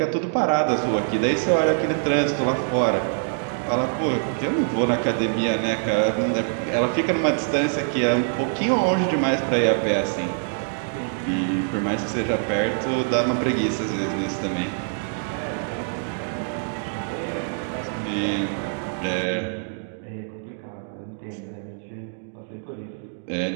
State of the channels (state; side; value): silent; left; digital silence